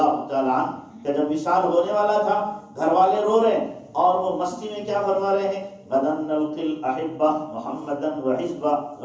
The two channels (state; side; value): identical; both; correlation 1.00